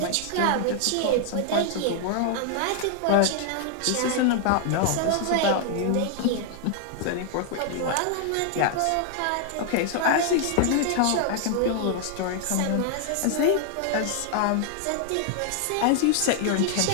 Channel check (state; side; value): different; both; correlation 0.00